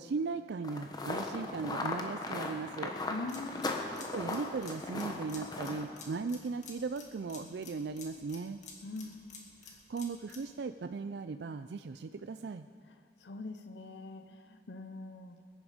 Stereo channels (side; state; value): both; normal; correlation 0.31